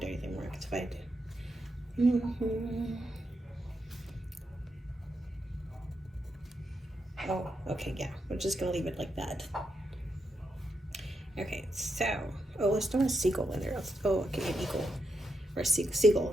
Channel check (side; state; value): both; normal; correlation 0.83